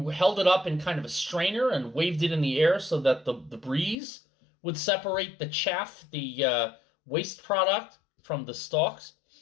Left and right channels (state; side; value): drops out; right; at 4.0 s